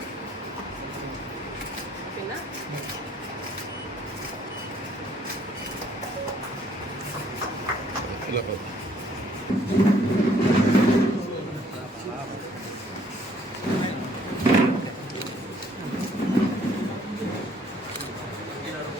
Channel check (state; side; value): normal; both; correlation 0.63